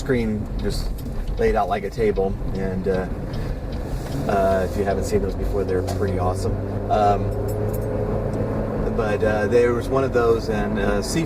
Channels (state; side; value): identical; both; correlation 1.00